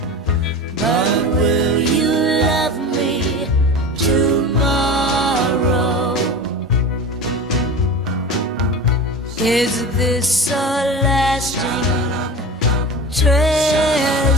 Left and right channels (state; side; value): normal; both; correlation 0.30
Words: But will you love me tomorrow? Is this a lasting